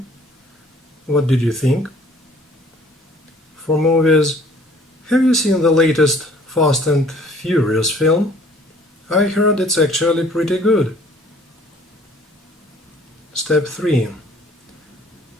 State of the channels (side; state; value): both; normal; correlation 0.55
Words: What did you think?" for movies. Have you seen the latest Fast and Furious film? I heard it's actually pretty good. Step 3.